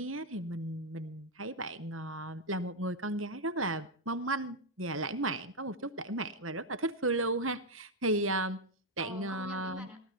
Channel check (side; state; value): both; normal; correlation 0.02